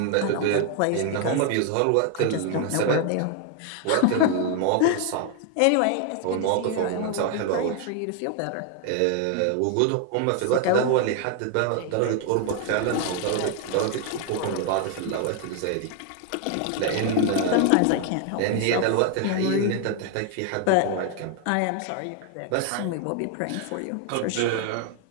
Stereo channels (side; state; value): both; different; correlation 0.00